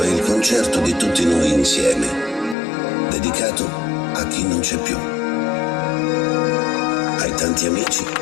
è il concerto di tutti noi insieme, dedicato a chi non c'è più, ai tanti amici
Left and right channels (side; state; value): right; drops out; at 2.6 s